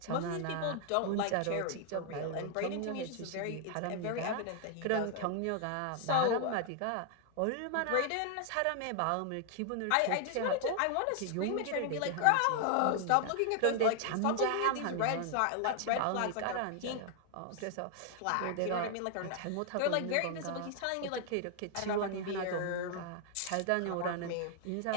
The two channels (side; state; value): both; different; correlation 0.00